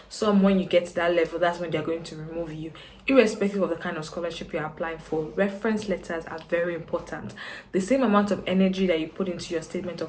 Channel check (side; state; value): both; identical; correlation 1.00